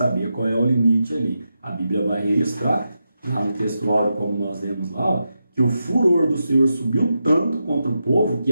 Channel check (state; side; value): inverted; both; correlation -0.88